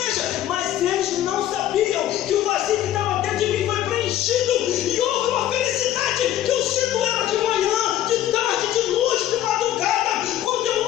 Mas eles não sabiam que o vazio que estava dentro de mim foi preenchido, e houve uma felicidade que eu sinto ela de manhã, de tarde, de noite, de madrugada, quando eu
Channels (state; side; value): quieter; right; 12.4 dB